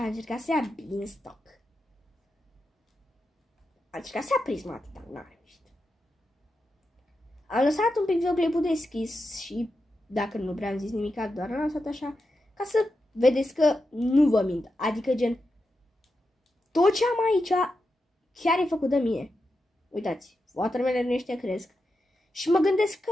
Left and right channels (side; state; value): both; normal; correlation 0.88